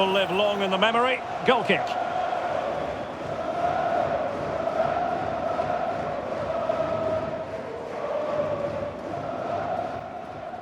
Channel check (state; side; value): identical; both; correlation 1.00